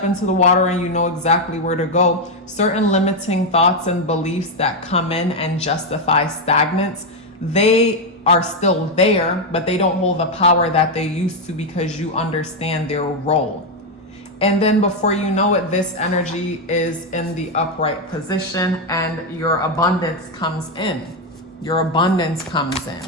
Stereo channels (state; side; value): normal; both; correlation 0.05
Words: into the water and you know exactly where to go, certain limiting thoughts and beliefs that come in and justify stagnance, they are still there, but they don't hold the power that they used to, because you understand their role. And then before you know it, this energy is in the upright position and your abundance comes in. Your abundance comes